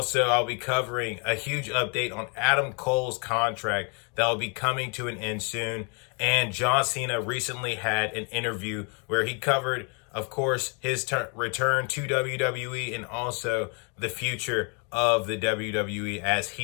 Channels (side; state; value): right; quieter; 36.2 dB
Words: I'll be covering a huge update on Adam Cole's contract that will be coming to an end soon. And John Cena recently had an interview where he covered, of course, his return to WWE and also the future of the WWE as